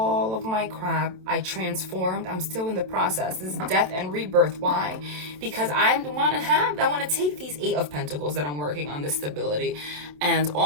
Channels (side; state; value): left; late; 27 ms